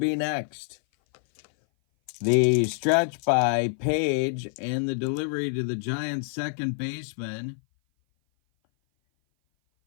next. The stretch by Paige and the delivery to the Giants' second baseman.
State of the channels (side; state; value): right; silent; 57 dB below the other